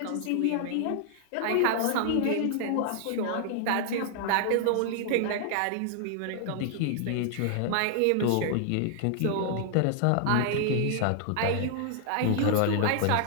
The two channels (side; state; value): both; different; correlation 0.00